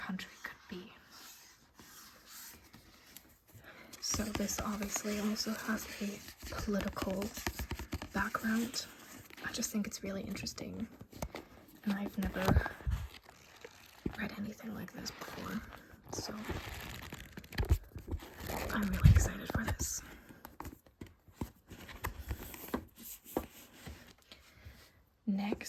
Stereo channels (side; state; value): both; identical; correlation 1.00